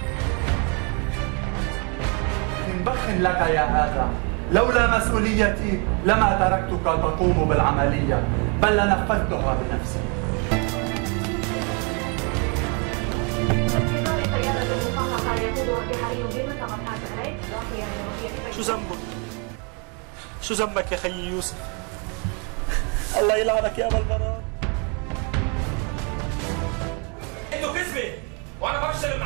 بخن لك يا هذا، لولا مسؤوليتي لما تركتك تقوم بالعملية، بل لنفذتها بنفسي. شو ذنبك؟ شو ذنبك يا خيي يوسف؟ الله يلعنك يا ابا البراء. انتوا كذبة وانا ما بشتغل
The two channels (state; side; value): quieter; left; 35.0 dB